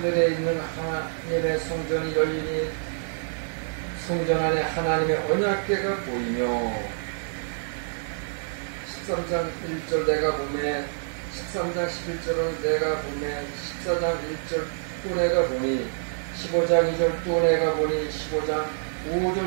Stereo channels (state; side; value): silent; left; digital silence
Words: 있는 하나님의 성전이 열리니 성전 안에 하나님의 언약궤가 보이며, 13장 1절 내가 보매, 13장 11절은 내가 보매, 14장 1절 또 내가 보니, 15장 2절 또 내가 보니, 15장 5절